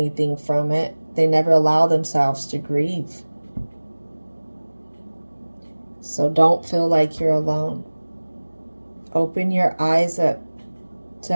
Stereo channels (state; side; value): inverted; both; correlation -1.00